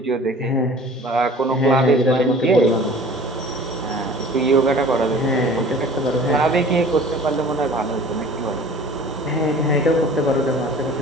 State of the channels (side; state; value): both; normal; correlation 0.45